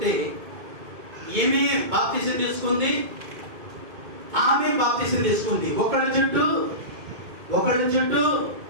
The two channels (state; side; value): late; left; 2.2 ms